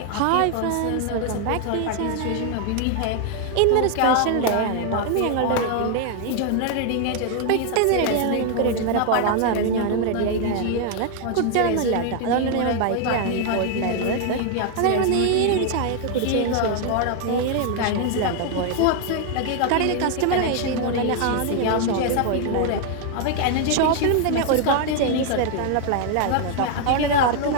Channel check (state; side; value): different; both; correlation 0.00